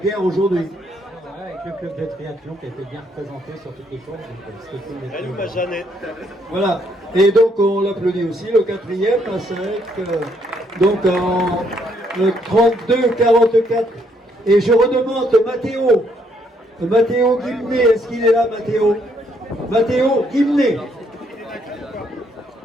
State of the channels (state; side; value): normal; both; correlation 0.71